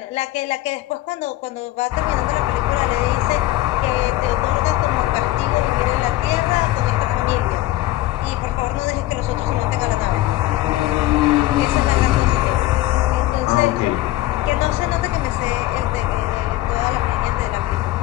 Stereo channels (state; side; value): quieter; right; 16.3 dB